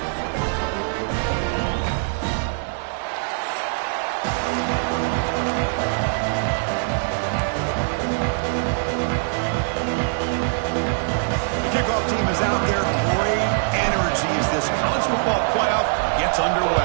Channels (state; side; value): silent; left; digital silence